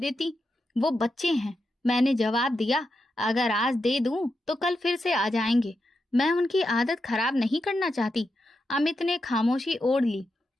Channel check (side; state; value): both; normal; correlation 0.87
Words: वो बच्चे हैं। मैंने जवाब दिया, अगर आज दे दूं तो कल फिर से आ जाएंगे। मैं उनकी आदत खराब नहीं करना चाहती। अमित ने खामोशी ओढ़ ली,